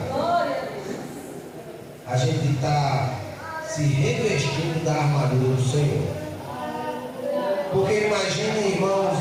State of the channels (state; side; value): identical; both; correlation 1.00